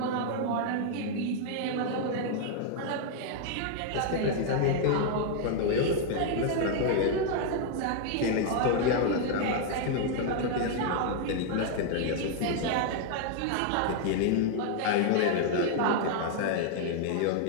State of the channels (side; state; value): both; different; correlation 0.00